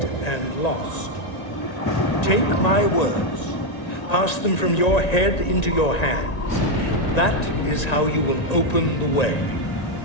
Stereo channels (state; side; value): late; right; 1.9 ms